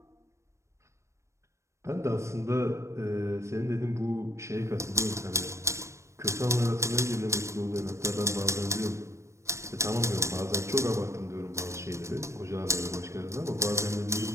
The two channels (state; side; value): late; left; 0.14 ms